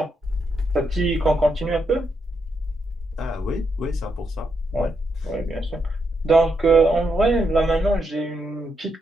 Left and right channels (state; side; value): normal; both; correlation 0.81